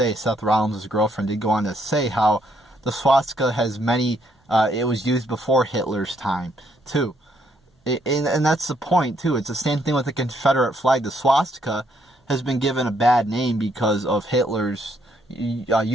Seth Rollins' girlfriend did go on to say how the swastika has many, it was used before Hitler's time, too. And that's the point, too. It's the same thing with the Confederate flag. The swastika has been given a bad name because of Hitler's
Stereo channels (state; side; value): normal; both; correlation 0.71